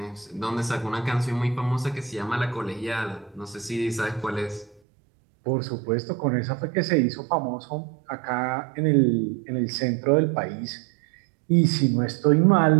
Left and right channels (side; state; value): left; drops out; at 4.8 s